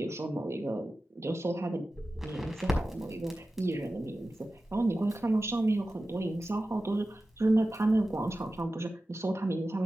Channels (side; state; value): both; normal; correlation 0.94